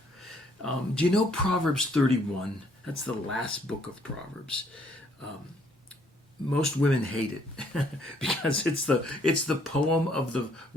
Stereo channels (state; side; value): normal; both; correlation 0.66